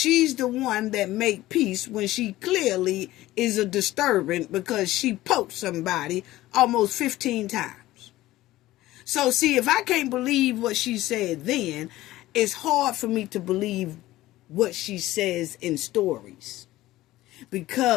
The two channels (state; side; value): quieter; right; 16.4 dB